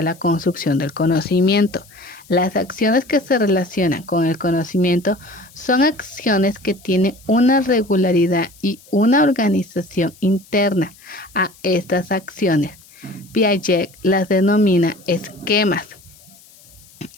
la construcción del conocimiento. Las acciones que se relacionan con el conocimiento son acciones que tienen una regularidad y una organización interna. A estas acciones, Piaget las denomina esquemas.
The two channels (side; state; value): left; noise; hiss, 25 dB below the sound